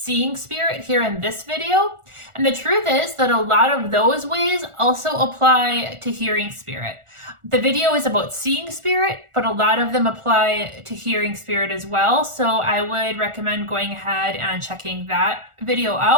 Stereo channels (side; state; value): left; late; 1.4 ms